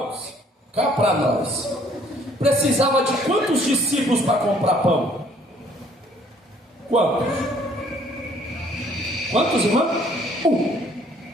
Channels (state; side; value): normal; both; correlation 0.60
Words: cá para nós, precisava de quantos discípulos para comprar pão? Quantos, irmãos?